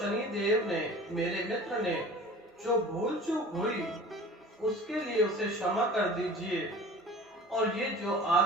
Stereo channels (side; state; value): both; normal; correlation 0.42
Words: देव ने, मेरे मित्र ने जो भूल चूक हुई उसके लिए उसे क्षमा कर दीजिए, और ये जो